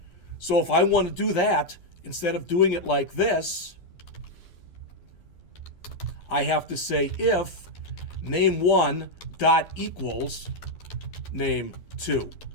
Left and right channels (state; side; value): late; right; 11 ms